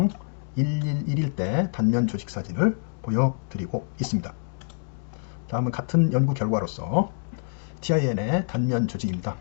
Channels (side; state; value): right; silent; digital silence